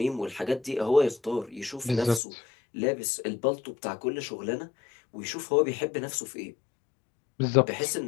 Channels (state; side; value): drops out; right; at 2.2 s